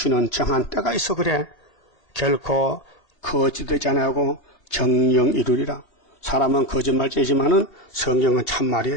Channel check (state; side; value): late; right; 2.8 ms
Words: 정한 때가 있어 그래. 결코 거짓되지 아니하고 정령 이루리라. 사람은 거짓말쟁이지만은 성경은